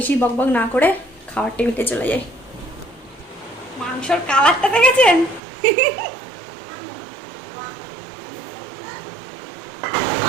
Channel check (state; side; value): drops out; left; at 5.4 s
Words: বকবক না করে খাওয়ার টেবিলে চলে যাই। মাংসর কালারটা দেখেছেন?